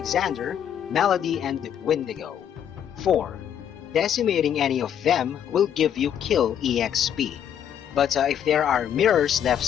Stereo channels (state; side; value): quieter; right; 9.3 dB